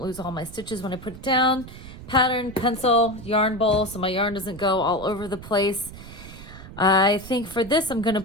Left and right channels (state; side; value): noise; right; rumble, 15 dB below the sound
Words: lose all my stitches when I put it down. Pattern, pencil, yarn bowl so my yarn doesn't go all over the place. I think for this I'm going to